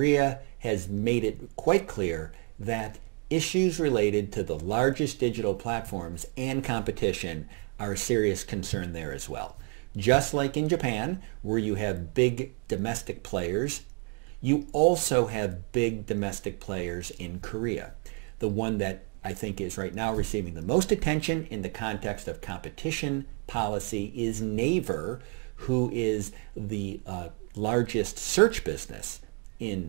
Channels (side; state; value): left; quieter; 36.8 dB